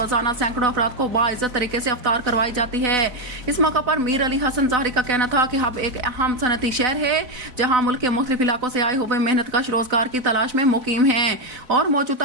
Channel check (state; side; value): late; left; 4.0 ms